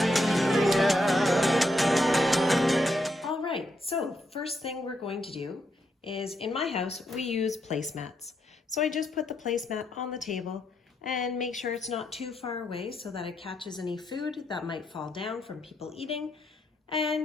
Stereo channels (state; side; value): normal; both; correlation 0.79